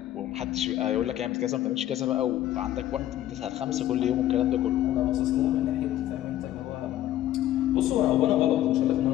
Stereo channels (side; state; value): right; quieter; 13.0 dB